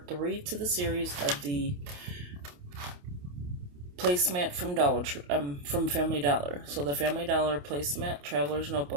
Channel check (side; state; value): left; late; 28 ms